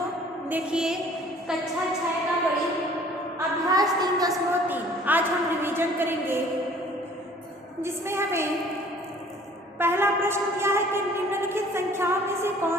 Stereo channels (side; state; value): both; normal; correlation 0.53